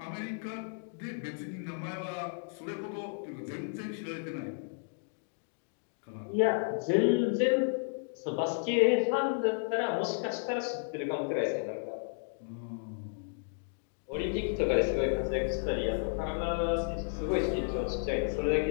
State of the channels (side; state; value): right; silent; 56 dB below the other